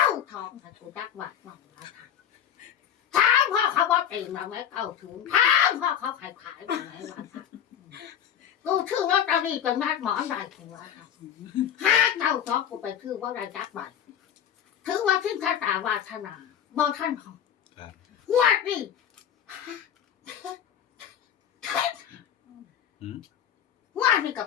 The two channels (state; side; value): quieter; right; 9.5 dB